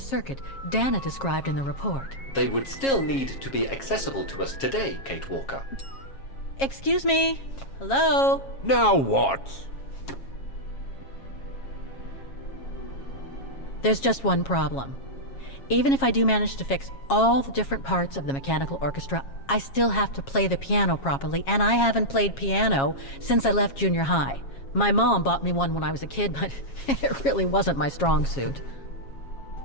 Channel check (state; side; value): late; right; 7.4 ms